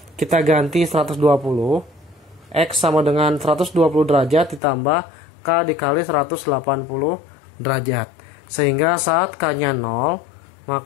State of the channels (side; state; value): right; drops out; at 4.6 s